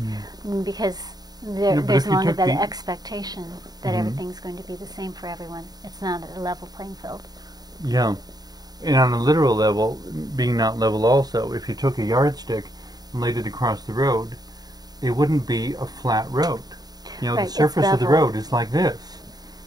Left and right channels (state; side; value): late; left; 0.19 ms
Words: because there's no longer that expectation that everything's going to be the same for everyone. It's not a level playing field. Yeah. And on a literal level, being not level also, if you took a yardstick and laid it across the road, it wouldn't be a flat road. You know, Right, the surface of the road is like this.